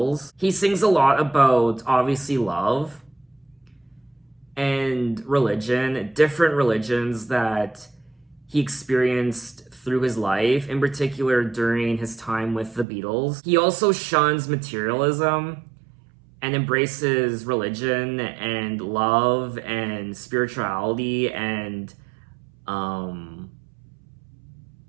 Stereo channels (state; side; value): drops out; left; at 12.9 s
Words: He sings a lot about, obviously, love and religion, different religions that he experienced through his life, in particular during his time with the Beatles. He also shuns materialism and embraces religion and love and spirituality and